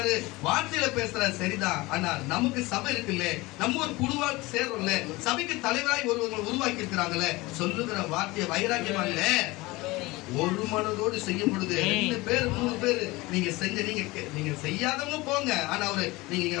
வார்த்தையில பேசுறாரு சரிதான், ஆனா நமக்கு சபை இருக்குல்ல, நம்ம ஒரு குழுவா சேர்றோம்ல, சபைக்கு தலைவராய் ஒருவங்க உருவாக்கி இருக்கிறாங்களே, சொல்லுகிற வார்த்தையை வைராக்கியமா இல்ல, ஒரு மனதோடு செய்யும் பொழுது 2 பேர் 3 பேர் நீங்க செஞ்ச, நீங்க செய்யாதவங்க போங்க, ஆனா நீங்க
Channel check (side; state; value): right; quieter; 21.6 dB